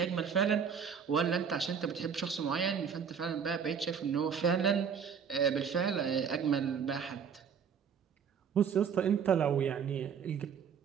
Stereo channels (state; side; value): quieter; left; 7.0 dB